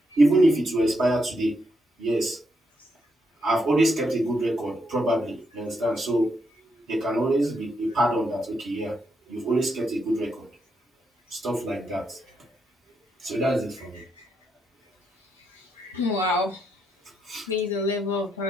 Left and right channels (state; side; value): normal; both; correlation 0.80